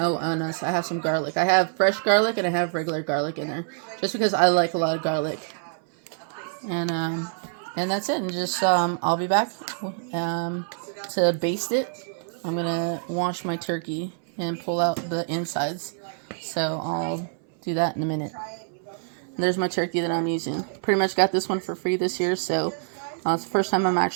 have some garlic. I have fresh garlic and I have regular garlic in there, just because I like a lot of garlic. And that's it. And just, I'll be back to baste it. I'm going to wash my turkey and pull out the insides. So I'll do that in a minute. And there's my turkey that I'm using. Pretty much got this one for free this year. So it's the first time I'm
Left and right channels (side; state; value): left; silent; 58 dB below the other